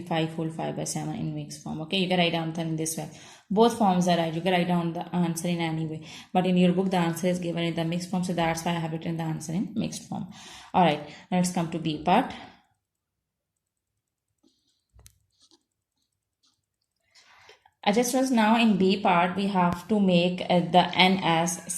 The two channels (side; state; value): both; identical; correlation 1.00